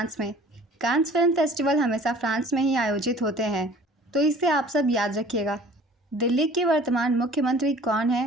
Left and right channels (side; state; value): both; normal; correlation 0.49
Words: में। कांस फिल्म फेस्टिवल हमेशा फ्रांस में ही आयोजित होते हैं, तो इसे आप सब याद रखिएगा। दिल्ली के वर्तमान मुख्यमंत्री कौन